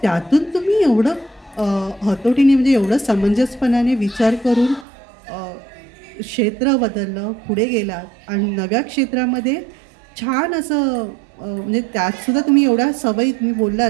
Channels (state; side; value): drops out; left; at 4.9 s